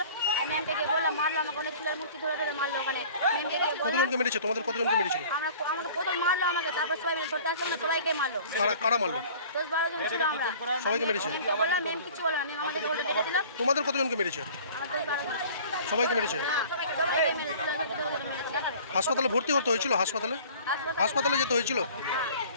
ম্যামকে গিয়ে বললাম, মারলো আমাকে, অনেক চুলের মূর্তি ধরে ধরে মারলো ওখানে। ম্যামকে গিয়ে কতজনকে মেরেছে? তোমাদের কতজনকে মেরেছিল? আমাকে প্রথম মারলো আমাকে, তারপর সবাই মিলে ধরতে আসলো না, সবাইকে মারলো। কারা মারলো? 10-12 জন ছিল আমরা। সবাইকে মেরেছে? ম্যামকে বললাম, ম্যাম কিছু বললো না, ম্যাম আমাদেরকে উল্টে ডেকে দিল। তোমাদের কতজনকে মেরেছে? আমার 10-12 জন। সবাইকে মেরেছে? হ্যাঁ, সবাইকে মেরেছিল, মেরেছে। হাসপাতালে ভর্তি করতে হয়েছিল? হাসপাতালে যেতে হয়েছিল?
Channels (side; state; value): both; inverted; correlation -0.47